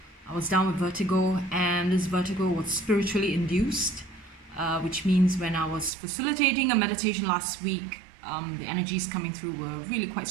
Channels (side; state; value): left; drops out; at 5.9 s